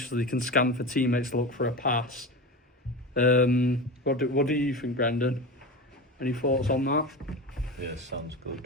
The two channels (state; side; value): normal; both; correlation 0.26